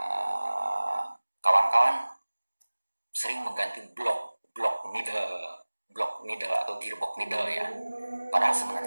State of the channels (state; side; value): inverted; both; correlation -1.00